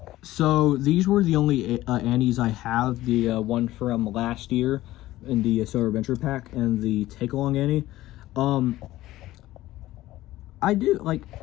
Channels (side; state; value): right; quieter; 16.0 dB